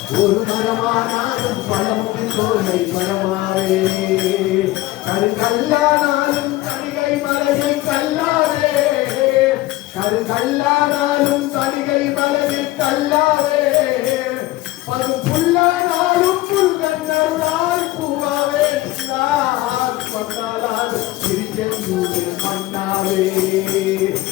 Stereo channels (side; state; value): right; quieter; 17.9 dB